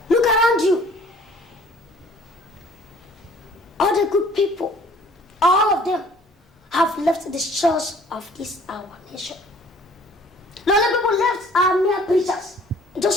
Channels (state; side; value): normal; both; correlation 0.54